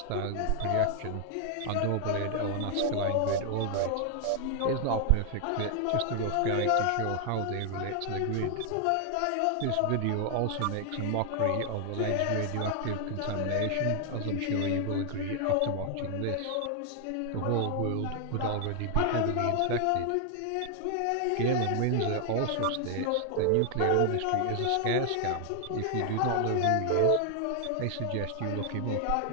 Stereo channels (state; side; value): different; both; correlation 0.00